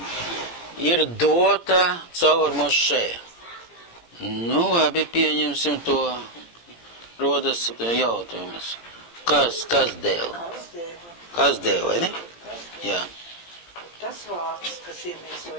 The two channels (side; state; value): right; late; 17 ms